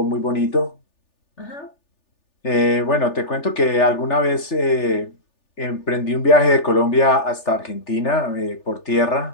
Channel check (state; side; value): late; right; 3.4 ms